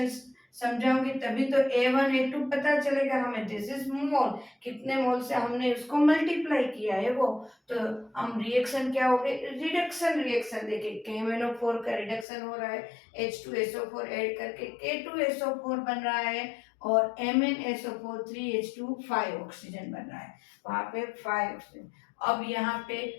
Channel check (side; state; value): right; drops out; at 12.2 s